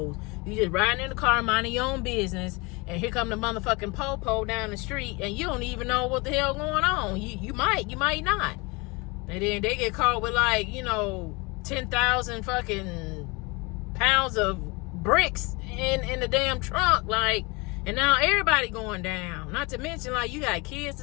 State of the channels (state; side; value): quieter; right; 26.8 dB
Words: You just riding in the car, minding your own business, and here come the motherfucking po-po down the street, and you don't even know what the hell going on. You might not. And then they get caught with, like, you know, 10,000 fucking pounds of bricks in the damn trunk, like, and now everybody going down. Not to mention, like, you got kids